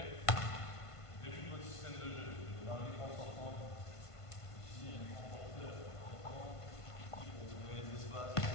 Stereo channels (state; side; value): late; right; 1.5 ms